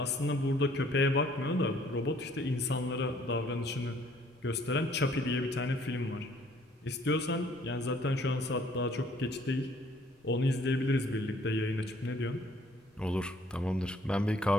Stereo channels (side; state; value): both; normal; correlation 0.60